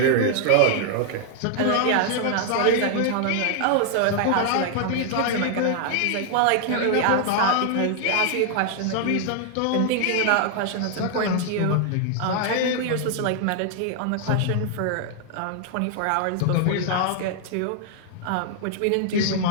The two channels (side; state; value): both; different; correlation 0.00